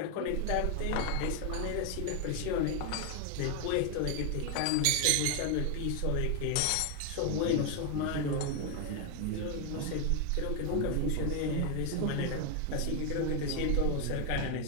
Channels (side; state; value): both; different; correlation 0.01